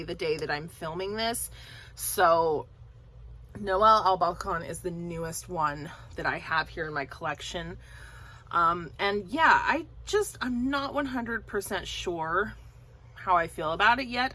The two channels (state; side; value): identical; both; correlation 1.00